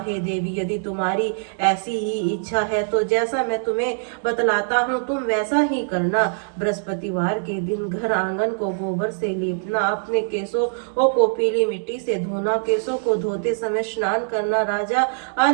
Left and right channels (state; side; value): silent; left; digital silence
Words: देवी, यदि तुम्हारी ऐसी ही इच्छा है तो जैसा मैं तुम्हें बतलाता हूँ तुम वैसा ही करना। बृहस्पतिवार के दिन घर आंगन को गोबर से लीपना, अपने केसों को पीली मिट्टी से धोना, केसों को धोते समय स्नान करना, राजा